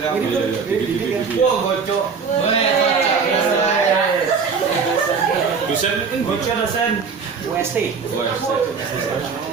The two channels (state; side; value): quieter; left; 5.6 dB